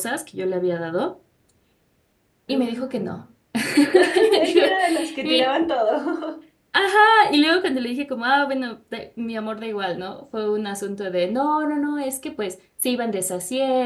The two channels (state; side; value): identical; both; correlation 1.00